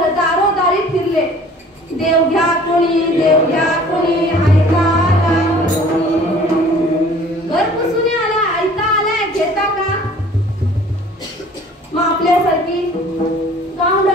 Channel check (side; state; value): both; normal; correlation 0.50